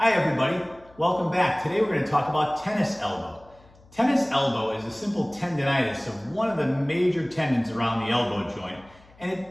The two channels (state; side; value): noise; left; hum, 27 dB below the sound